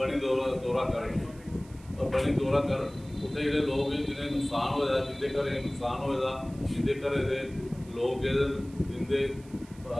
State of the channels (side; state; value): right; noise; hiss, 25 dB below the sound